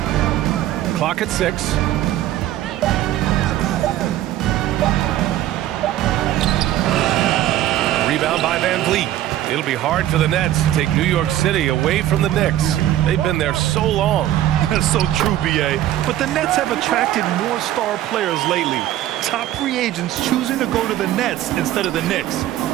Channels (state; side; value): quieter; left; 13.3 dB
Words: Clock at 6. Rebound by VanVleet. It'll be hard for the Nets to take New York City away from the Knicks. They've been there so long. That's so true, B.A. But the Nets have attracted more star players lately. Top free agents choosing to go to the Nets instead of the Knicks.